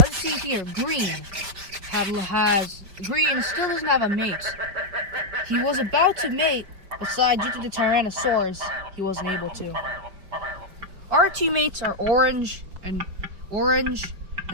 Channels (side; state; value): left; late; 5.1 ms